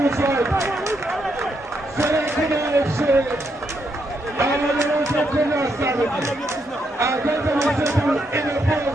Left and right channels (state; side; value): normal; both; correlation 0.78